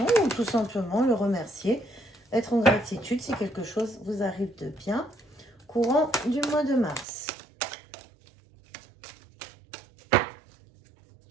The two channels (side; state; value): left; drops out; at 7.1 s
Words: ou tout simplement le remercier, être en gratitude si quelque chose vous arrive de bien, courant du mois de mars.